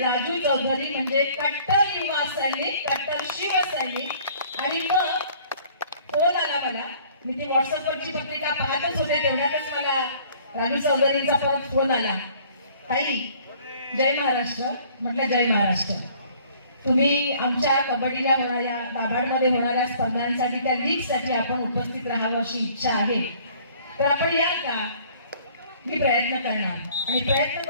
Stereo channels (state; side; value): inverted; both; correlation -0.55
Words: राजू चौधरी म्हणजे कट्टर युवा सैनिक, कट्टर शिवसैनिक. आणि मग फोन आला मला, मी ती व्हॉट्सअपवरची पत्रिका पाहतच होते तेवढ्यातच मला राजू चौधरींचा परत फोन आला, ताई जय महाराष्ट्र. म्हटलं जय महाराष्ट्र. तुम्ही आमच्या कबड्डीला होणाऱ्या दाभाडमध्ये होणाऱ्या स्पर्धांसाठी त्या लीगसाठी आपण उपस्थित राहावं अशी इच्छा आहे. तर आपण याल का? मी प्रयत्न करणार आणि प्रयत्न